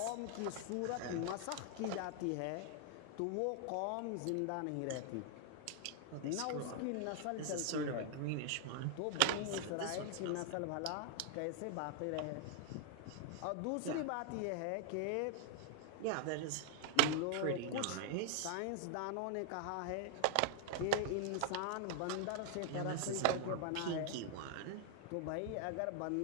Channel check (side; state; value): both; different; correlation 0.00